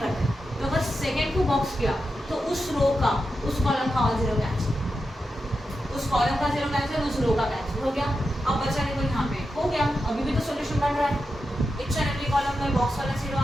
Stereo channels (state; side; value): normal; both; correlation 0.89